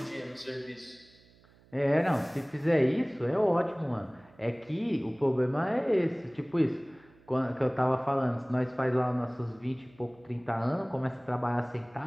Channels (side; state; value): right; noise; hum, 28 dB below the sound